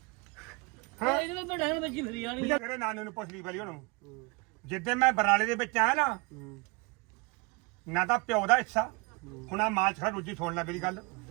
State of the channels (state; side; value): quieter; left; 28.8 dB